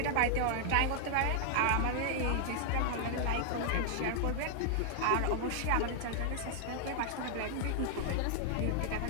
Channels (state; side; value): different; both; correlation 0.00